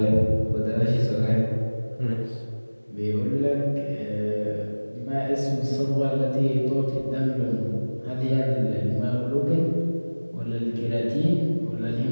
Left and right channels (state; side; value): inverted; both; correlation -1.00